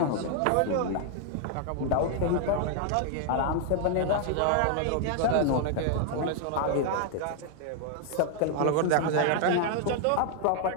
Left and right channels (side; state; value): both; different; correlation 0.00